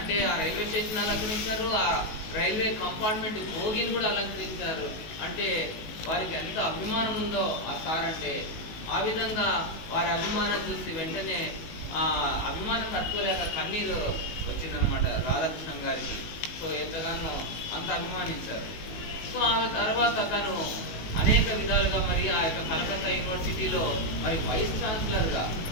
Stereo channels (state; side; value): late; right; 19 ms